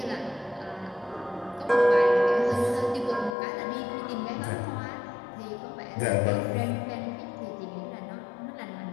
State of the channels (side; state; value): right; drops out; at 3.4 s